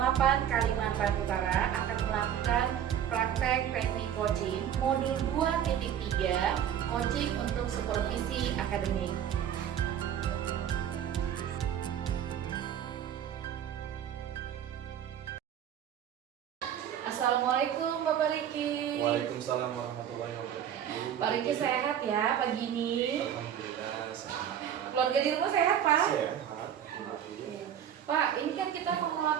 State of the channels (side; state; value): left; quieter; 9.6 dB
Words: 8 Kalimantan Utara akan melakukan praktek teknik coaching modul 2.3 coaching untuk supervisi akademik. Assalamualaikum Bapak Riki. Waalaikumsalam warahmatullahi wabarakatuh. Pak Riki sehat ya pagi ini? Alhamdulillah sehat. Keluarga di rumah sehat Pak? Sehat. Pak, ini kan kita mau